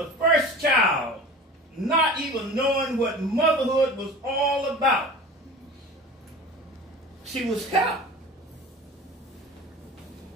first child, not even knowing what motherhood was all about, she was helped.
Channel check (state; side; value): normal; both; correlation 0.38